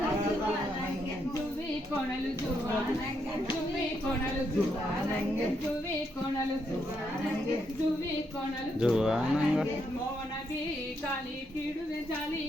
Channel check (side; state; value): both; normal; correlation 0.78